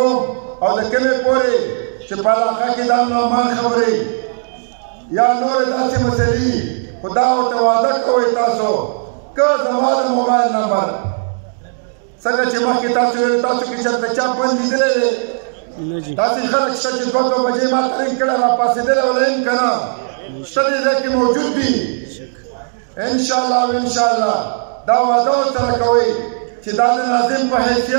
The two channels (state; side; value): silent; left; digital silence